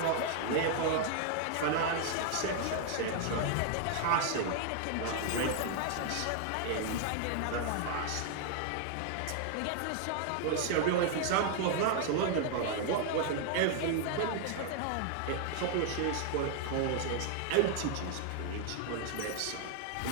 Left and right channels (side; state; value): both; different; correlation 0.00